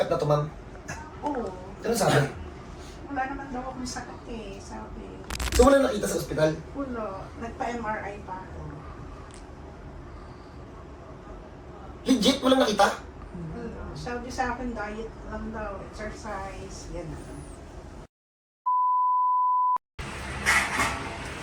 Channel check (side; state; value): both; identical; correlation 1.00